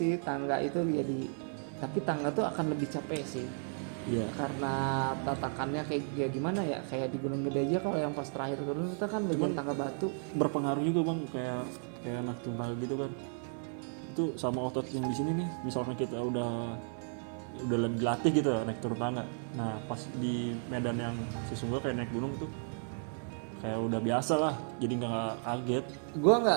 tangga itu jadi, tapi tangga tuh akan lebih capek sih. Iya. Karena tatakannya kayak gimana ya, kayak di Gunung Gede aja kalau yang pas terakhir turun itu kan bagian tangga batu. Berpengaruh juga bang, kayak naik turun tangga gitu kan, itu sama otot yang di sini nih. Misalnya kita udah lagi dilatih gitu ya, naik turun tangga, nah pas di medan yang sesungguhnya kayak naik gunung tuh kayak udah biasa lah, jadi nggak kaget. Gue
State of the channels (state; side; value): silent; left; 55 dB below the other